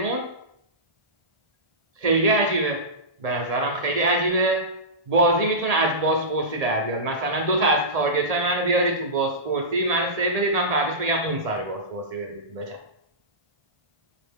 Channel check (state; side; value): late; left; 1.8 ms